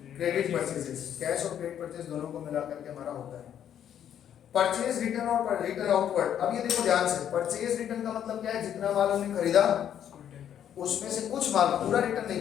credit purchases. Cash और क्रेडिट परचेज दोनों को मिला करके हमारा होता है परचेज रिटर्न और रिटर्न आउटवर्ड। अब ये देखो ध्यान से, परचेज रिटर्न का मतलब क्या है, जितना माल हमने खरीदा उसमें से कुछ माल, पूरा रिटर्न नहीं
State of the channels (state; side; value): quieter; right; 9.8 dB